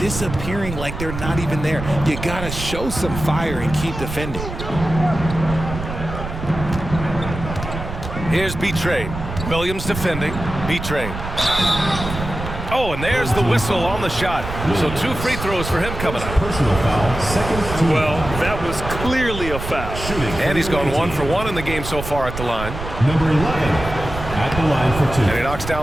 like they're not even there. You gotta show some fire and keep defending. Here's B-Trade. Williams defending. B-Trade. Oh, and there's the whistle on the shot. So 2 free throws for him coming up. Personal foul, second team. Well, that was clearly a foul. Shooting. And he's gone 1 for 1 in the game so far at the line. Number 11 at the line for 2. And he knocks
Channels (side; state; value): right; noise; rumble, 8 dB below the sound